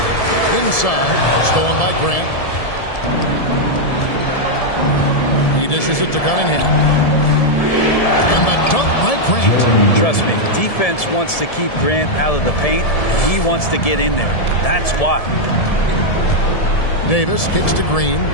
Inside, stolen by Grant. He dishes it to Cunningham. And the dunk by Grant. Trust me, defense wants to keep Grant out of the paint, and he wants to get in there. That's why. Davis kicks to Green.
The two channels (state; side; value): late; right; 1.7 ms